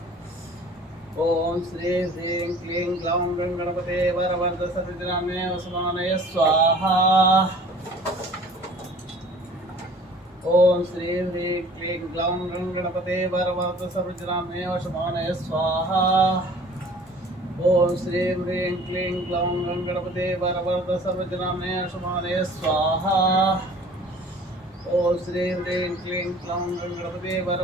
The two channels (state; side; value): normal; both; correlation 0.49